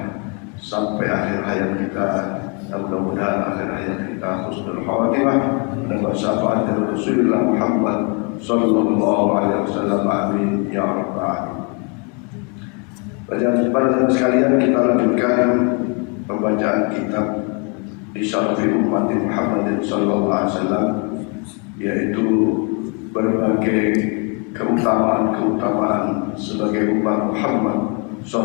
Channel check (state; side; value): quieter; right; 34.9 dB